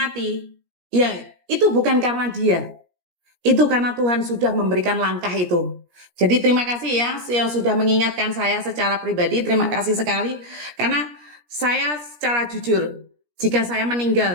ya itu bukan karena dia. Itu karena Tuhan sudah memberikan langkah itu. Jadi terima kasih ya yang sudah mengingatkan saya secara pribadi. Terima kasih sekali. Karena saya secara jujur, jika saya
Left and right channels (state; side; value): late; left; 17 ms